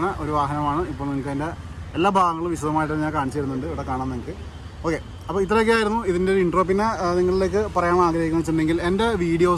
ഒരു വാഹനമാണ്. ഇപ്പോൾ നിങ്ങൾക്ക് അതിൻ്റെ എല്ലാ ഭാഗങ്ങളും വിശദമായിട്ട് ഞാൻ കാണിച്ചു തരുന്നുണ്ട്, ഇവിടെ കാണാൻ നിങ്ങൾക്ക്. ഓക്കെ, അപ്പോൾ ഇത്രയൊക്കെയായിരുന്നു ഇതിൻ്റെ ഒരു ഇൻട്രോ. പിന്നെ നിങ്ങളിലേക്ക് പറയാൻ ആഗ്രഹിക്കുന്നത് വെച്ചിട്ടുണ്ടെങ്കിൽ എൻ്റെ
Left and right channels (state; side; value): identical; both; correlation 1.00